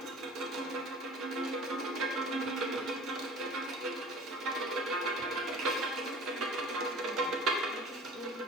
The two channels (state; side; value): normal; both; correlation 0.44